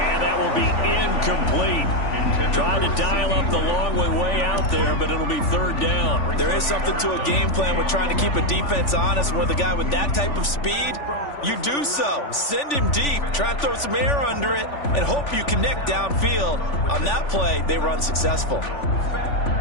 that will be incomplete. Trying to dial up the long way out there, but it'll be third down. There is something to a game plan with trying to keep a defense honest. With a guy with that type of speed, you do so. Send him deep. Try and throw some air under it and hope you connect downfield. On that play, they were unsuccessful.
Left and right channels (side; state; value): right; late; 3.4 ms